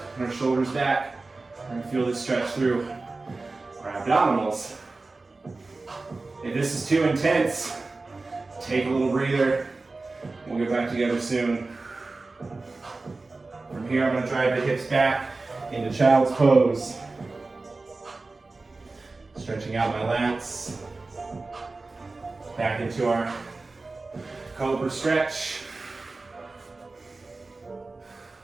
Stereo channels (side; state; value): left; quieter; 3.5 dB